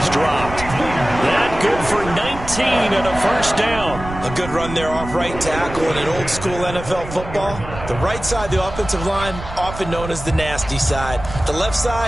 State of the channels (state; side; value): noise; right; rumble, 10 dB below the sound